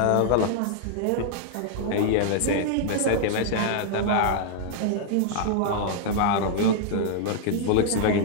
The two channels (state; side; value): different; both; correlation -0.01